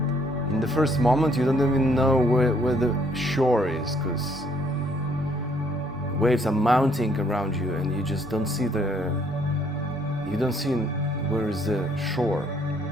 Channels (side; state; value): both; normal; correlation 0.66